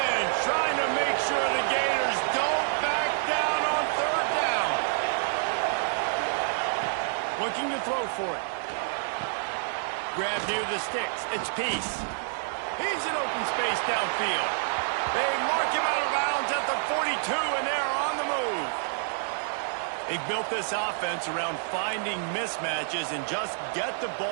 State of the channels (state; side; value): silent; left; digital silence